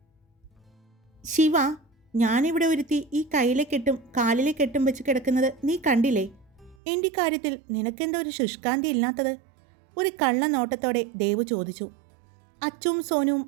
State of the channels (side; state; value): left; drops out; at 6.8 s